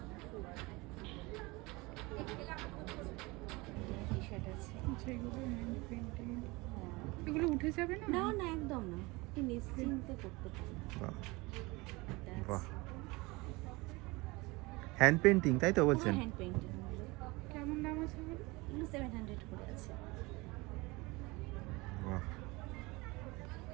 টি-শার্ট আছে। আচ্ছা, এগুলো হ্যান্ড পেন্টিং। এগুলো উঠে যাবে না? না না, একদম না, আপনি নিশ্চিন্তে করতে পারেন। বাহ বাহ, হ্যান্ড পেন্টিং তাই তো বলছেন? হ্যান্ড পেইন্টিং কেমন দাম আছে এগুলো? এগুলো 700 করে আছে। বাহ,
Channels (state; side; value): quieter; left; 23.8 dB